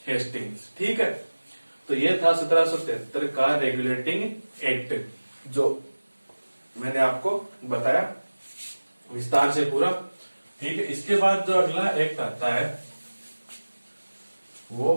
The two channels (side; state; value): both; inverted; correlation -1.00